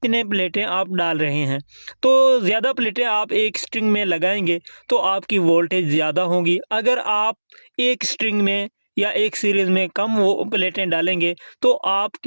प्लेटें आप डाल रहे हैं। तो ज़्यादा प्लेटें आप एक स्ट्रिंग में लगाएंगे तो आपकी वोल्टेज ज़्यादा होगी। अगर आप एक स्ट्रिंग में या एक सीरीज़ में कम वो प्लेटें डालेंगे तो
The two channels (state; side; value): inverted; both; correlation -1.00